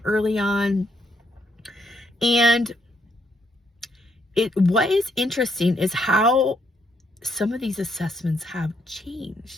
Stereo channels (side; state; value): both; normal; correlation 0.74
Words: early on. And what is interesting is how some of these assessments have